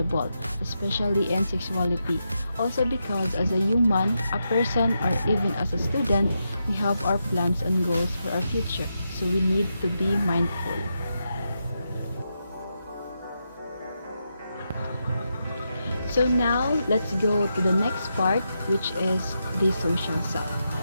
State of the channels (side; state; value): both; inverted; correlation -0.85